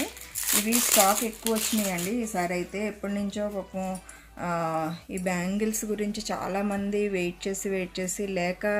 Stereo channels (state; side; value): identical; both; correlation 1.00